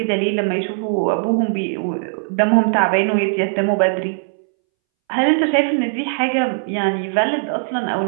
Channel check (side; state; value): left; silent; 65 dB below the other